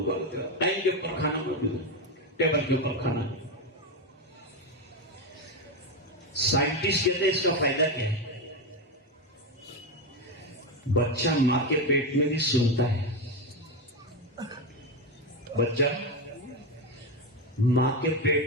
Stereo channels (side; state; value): both; normal; correlation 0.12